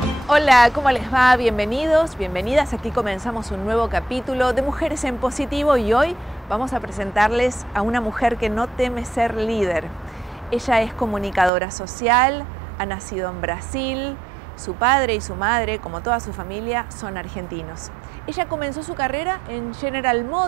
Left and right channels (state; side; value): drops out; left; at 11.5 s